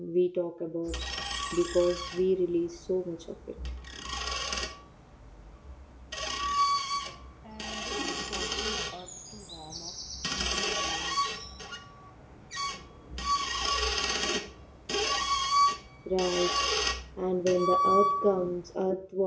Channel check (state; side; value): identical; both; correlation 1.00